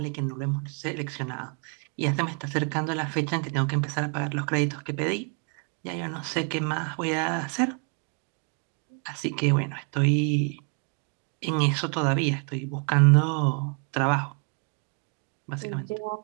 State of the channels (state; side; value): quieter; left; 39.6 dB